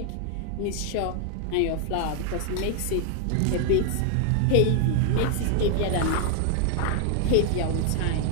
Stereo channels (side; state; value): both; different; correlation 0.00